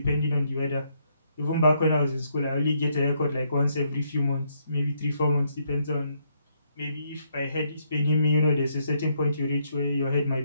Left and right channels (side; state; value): both; inverted; correlation -0.74